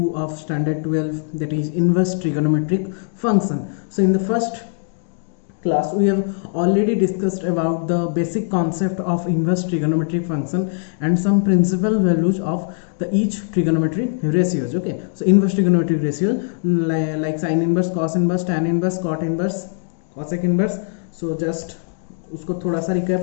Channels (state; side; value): silent; right; digital silence